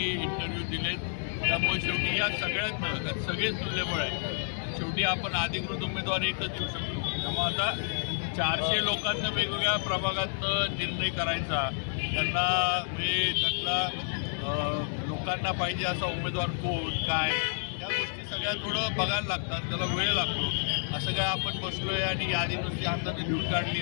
इंटरव्ह्यू दिलेत. त्यामुळे शेवटी या सगळ्यात सगळेच तुल्यबळ आहे. शेवटी आपण अधिकृत उमेदवार एकच देऊ शकतो. त्यामुळे आता 400 लोकांना वेगवेगळ्या प्रभागातनं निर्णय करायचा, त्यांना म्हणजे त्यातला लोकांना पाहिजे असा उमेदवार कोण काय या गोष्टी सगळ्या थोडं बघायला लागतात, त्याला वेळ लागतो. असं काय आपण बसलोय आणि यादी नुसती हाताने लिहून काढली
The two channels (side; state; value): right; silent; digital silence